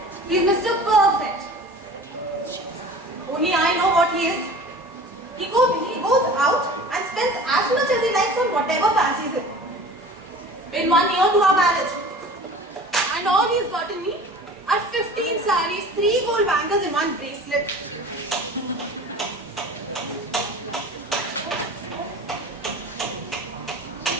he's Mr. Perfect. Only I know what he is. He goes out and spends as much as he likes on whatever fancies him. Been 1 year to our marriage. And all he's gotten me are 15 sarees, 3 gold bangles and 1 bracelet.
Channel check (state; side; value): normal; both; correlation 0.41